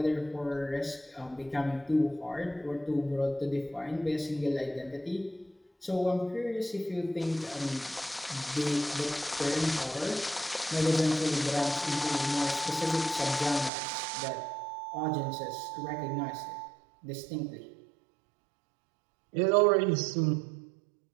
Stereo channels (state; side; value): drops out; left; at 13.7 s